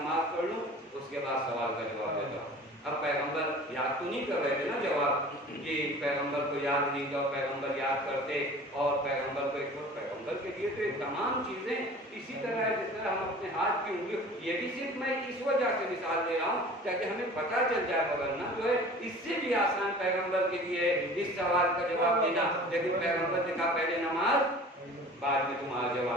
پڑھ لوں اس کے بعد سوال کا جواب دیتا ہوں۔ اب پیغمبر یاد تو نہیں کر رہے تھے نا جواب، کہ پیغمبر کو یاد نہیں تھا، پیغمبر یاد کرتے اور پیغمبر کو ایک وقت پیغمبر کے لیے تو تمام چیزیں اسی طرح ہے جس طرح ہم اپنے ہاتھ کی انگلی، یہ بھی صرف میں اس وجہ سے مثال دے رہا ہوں تاکہ ہمیں پتہ چل جائے، ورنہ جو ہے اس سے بھی آسان پیغمبر کے لیے اس سوال کا جواب دینا، لیکن پیغمبر نے کہا پہلے نماز بعد میں تمہارا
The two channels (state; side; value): normal; both; correlation 0.43